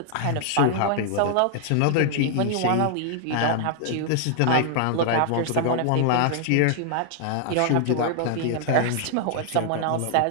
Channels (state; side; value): different; both; correlation -0.01